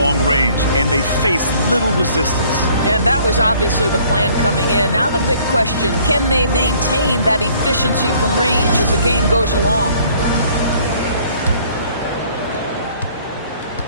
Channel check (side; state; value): both; inverted; correlation -0.58